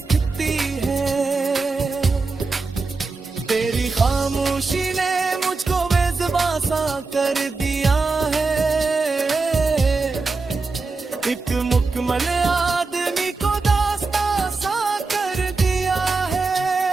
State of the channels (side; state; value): left; quieter; 4.0 dB